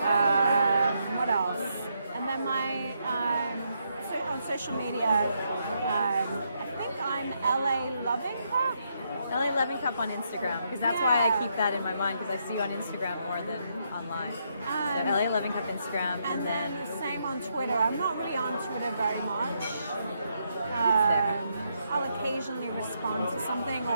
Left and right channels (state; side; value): inverted; both; correlation -0.78